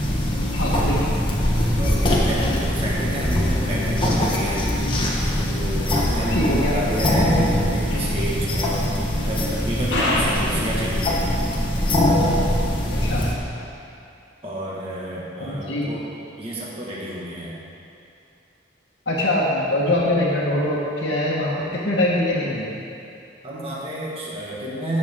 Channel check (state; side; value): normal; both; correlation 0.59